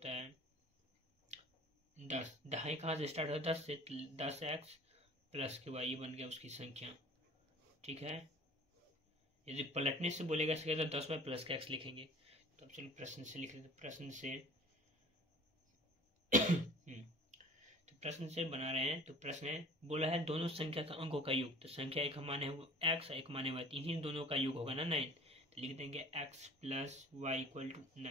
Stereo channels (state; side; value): normal; both; correlation 0.45